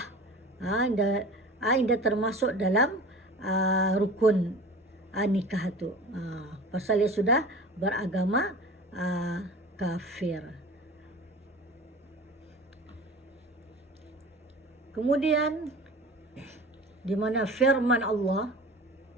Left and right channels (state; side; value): normal; both; correlation 0.38